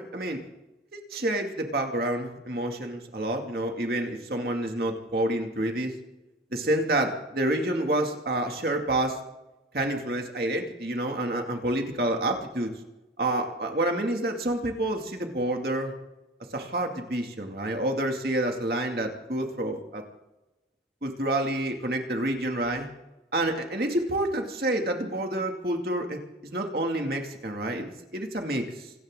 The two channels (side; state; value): both; normal; correlation 0.36